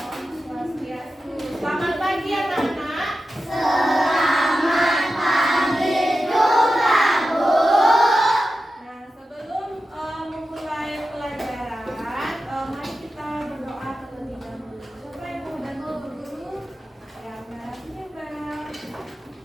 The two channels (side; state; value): both; normal; correlation 0.92